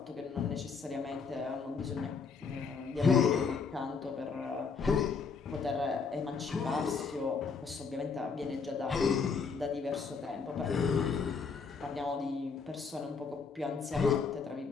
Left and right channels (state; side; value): quieter; right; 5.2 dB